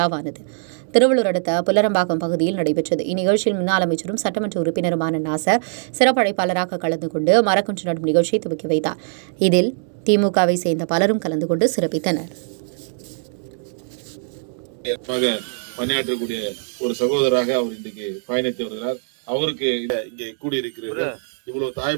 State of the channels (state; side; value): silent; left; digital silence